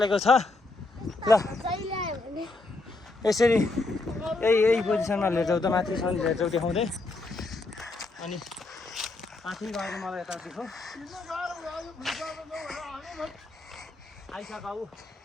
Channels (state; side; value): quieter; right; 3.3 dB